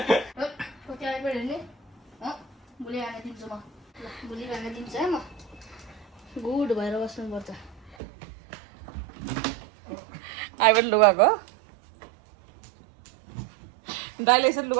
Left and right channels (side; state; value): left; drops out; at 8.0 s